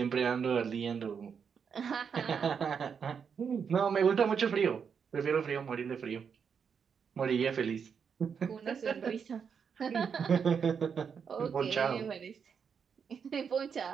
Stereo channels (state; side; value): quieter; left; 6.7 dB